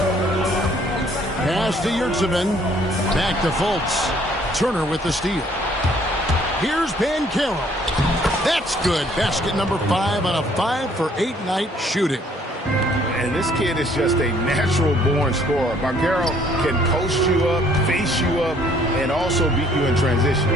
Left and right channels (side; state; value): both; normal; correlation 0.61